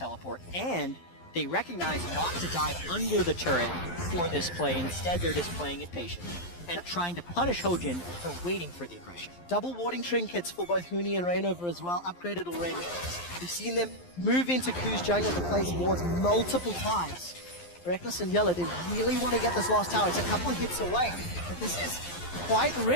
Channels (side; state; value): right; late; 11 ms